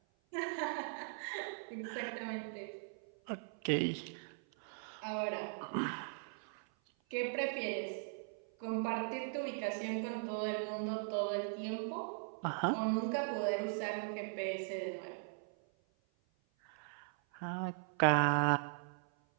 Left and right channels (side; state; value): left; silent; 51 dB below the other